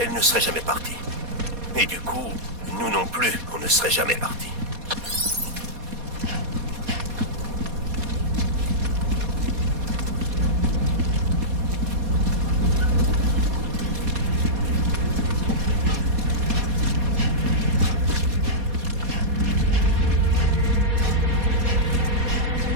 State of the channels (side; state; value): left; late; 4.2 ms